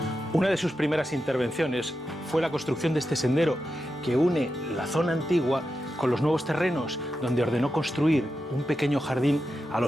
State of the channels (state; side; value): normal; both; correlation 0.89